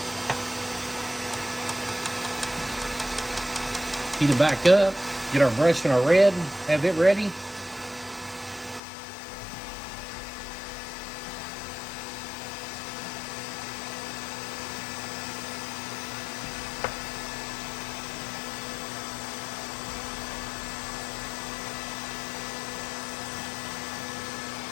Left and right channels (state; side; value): drops out; right; at 8.8 s